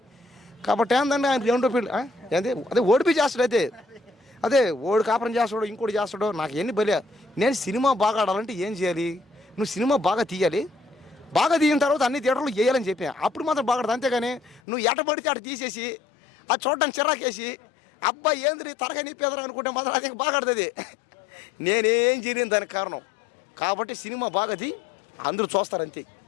కాబట్టి ఏంటంటే ఆయన రెండో పెళ్ళి ఏంటి అదే ఓడిపి చేస్తాడు, అదే ఓడి కాపురం చేస్తాడు, ఇంకోటి చేస్తాడు. నాకు ఎన్ని బలి. నేను సినిమా బాగా ఆడాలంటే ఏం చేయాలి? నువ్వు సినిమా బాగా తీయాలి, బాగా తీయిన తర్వాత అన్ని థియేటర్లు వేయాలని చెప్పా, అప్పుడు మాత్రం బాగా ఆడదు. అంతేగాని నువ్వు ఎటపడితే అటు తీసేసి అది చూడడానికి చిరాకేసి అబ్బాయి ఏంది తరగా నీ పేదరు అనుకుంటే మాత్రం అది బాగా ఆడుతుంది. నేనేం చేయలేను దానికి కారణం. కాబట్టి సినిమా బాగా తీ, అందరూ చూస్తారు అంతే.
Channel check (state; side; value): drops out; right; at 14.6 s